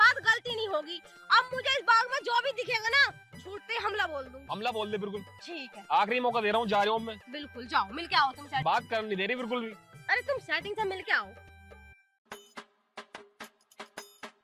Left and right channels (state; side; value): identical; both; correlation 1.00